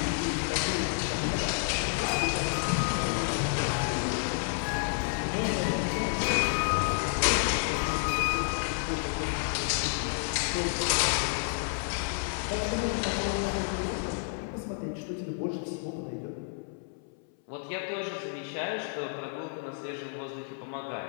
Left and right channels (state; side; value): silent; right; 58 dB below the other